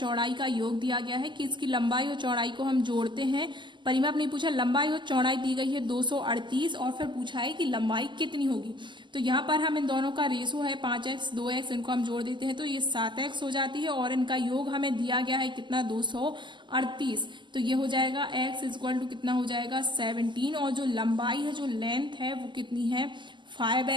का योग दिया गया है कि इसकी लंबाई और चौड़ाई को हम जोड़ते हैं। परिमाप नहीं पूछा, लंबाई और चौड़ाई दी गई है 238 और फिर पूछा है कि लंबाई कितनी होगी। तो यहाँ पर हम इन दोनों का रेशो है 5x 2x, इनको हम जोड़ देते हैं तो ये 7x हो जाती है और इनका योग हमें दिया गया है कितना 238। तो ये हो जाएगा x इक्वल टू कितना हो जाएगा 17 और जो लंबाई है जो लेंथ है वो कितनी है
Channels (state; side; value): late; left; 0.22 ms